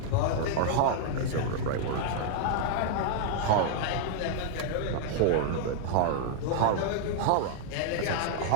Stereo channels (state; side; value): different; both; correlation -0.01